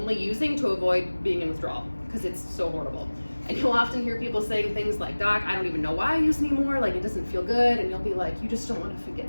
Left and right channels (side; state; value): both; inverted; correlation -1.00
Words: using to avoid being in withdrawal because it's so horrible. And you'll often hear people saying things like, "Doc, I don't even know why I use anymore, like it doesn't feel good," and you'll be like, "You just don't want to